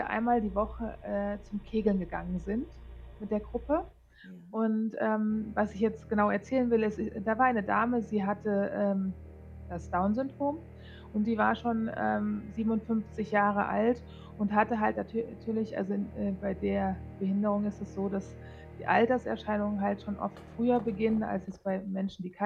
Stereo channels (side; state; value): both; identical; correlation 1.00